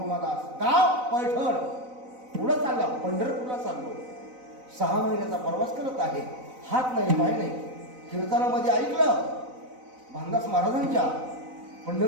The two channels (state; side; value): late; left; 4.0 ms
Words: गाव पैठण. पुढं चालला, पंढरपूरला चाललो, 6 महिन्याचा प्रवास करत आहे, हात नाही पाय नाही. कीर्तनामध्ये ऐकलं भानदास महाराजांच्या,